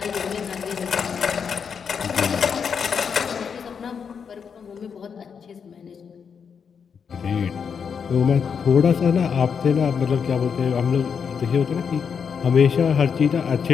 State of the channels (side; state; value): right; quieter; 6.6 dB